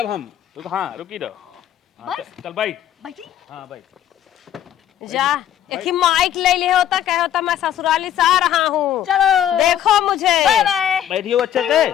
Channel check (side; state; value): right; quieter; 10.9 dB